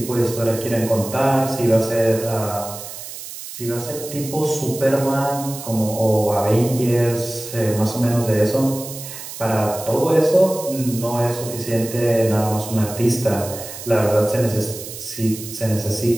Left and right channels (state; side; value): noise; right; hiss, 11 dB below the sound